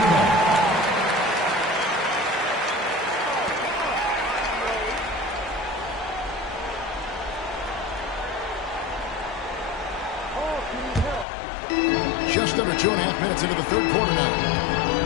Just under 2.5 minutes into the third quarter now.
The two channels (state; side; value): drops out; right; at 11.2 s